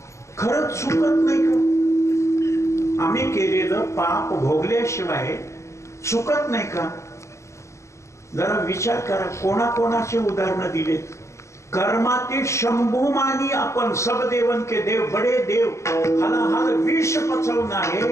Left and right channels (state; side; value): late; right; 0.14 ms